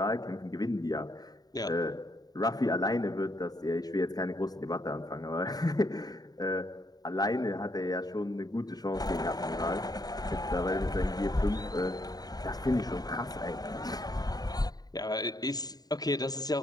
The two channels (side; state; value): right; late; 0.19 ms